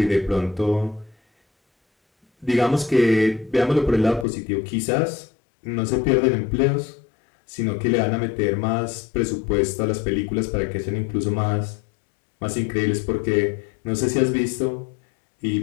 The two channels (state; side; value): drops out; right; at 4.2 s